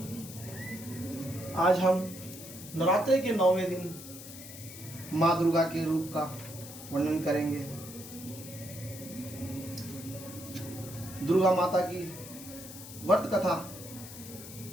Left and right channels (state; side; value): noise; left; hiss, 14 dB below the sound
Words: आज हम नवरात्रि के 9वें दिन माँ दुर्गा के रूप का वर्णन करेंगे। दुर्गा माता की व्रत कथा